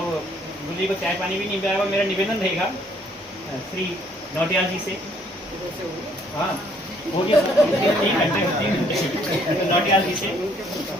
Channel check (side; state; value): both; normal; correlation 0.64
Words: गुल्ली को चाय पानी भी नहीं पिलाएगा। मेरा निवेदन रहेगा श्री नौटियाल जी से, हाँ हो गया 3 घंटे नौटियाल जी से